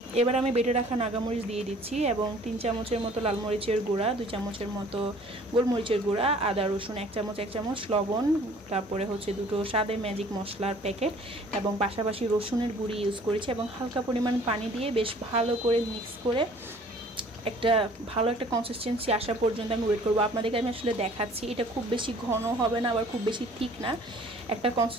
এবার আমি বেটে রাখা নাগামরিচ দিয়ে দিচ্ছি এবং 3 চামচের মতো লাল মরিচের গুঁড়া, 2 চামচের মতো গোলমরিচের গুঁড়া, আদা রসুন 1 চামচ, লবণ, তারপরে দুটো স্বাদে ম্যাজিক মশলার প্যাকেট এবং পাশাপাশি রসুনের গুঁড়ি ইউজ করেছি এবং হালকা পরিমাণ পানি দিয়ে বেশ ভালো করে মিক্স করে একটা ভালো একটা কনসিস্টেন্সি আসা পর্যন্ত আমি ওয়েট করবো। আপনাদেরকে আমি আসলে দেখাচ্ছি, এটা খুব বেশি ঘন হবে না আবার খুব বেশি থিক না, একটা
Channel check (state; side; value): normal; both; correlation 0.52